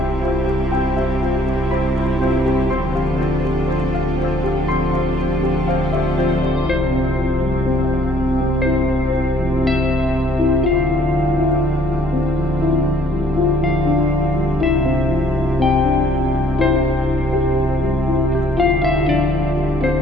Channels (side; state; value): both; normal; correlation 0.60